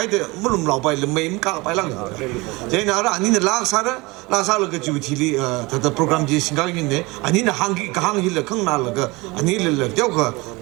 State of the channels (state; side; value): quieter; left; 23.8 dB